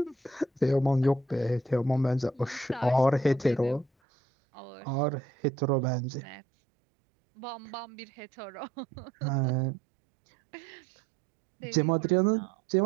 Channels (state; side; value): drops out; left; at 3.9 s